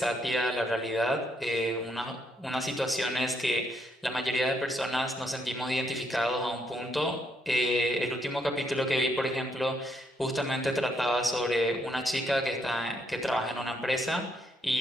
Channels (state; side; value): normal; both; correlation 0.74